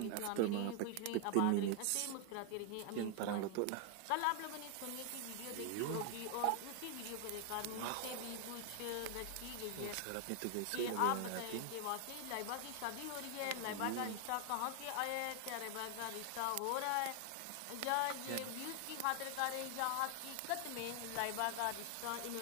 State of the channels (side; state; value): both; different; correlation 0.00